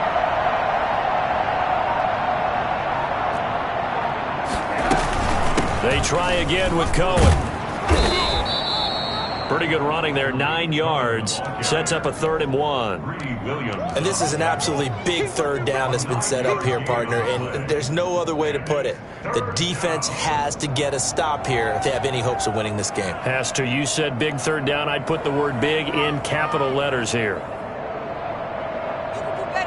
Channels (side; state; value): both; identical; correlation 1.00